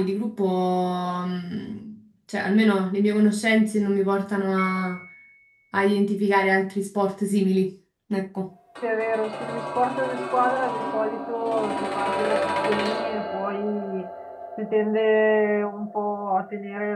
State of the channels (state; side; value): identical; both; correlation 1.00